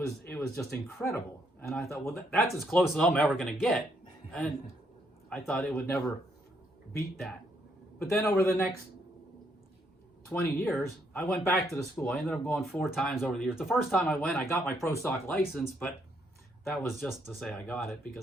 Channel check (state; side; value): normal; both; correlation 0.73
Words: just incredible. And I thought, well, that's as close as I'm ever going to get. And I thought it would never beat that. But then over the next 20 years, I went back to the school. I ended up going 4 times over the years. The first time I went, I got my pro stock license, but that was just to say I got it,